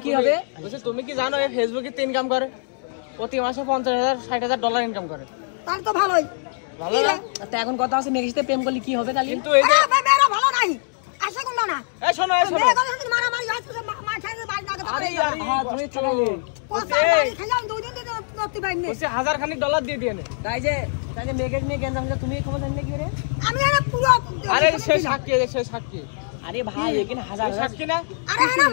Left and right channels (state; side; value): silent; right; digital silence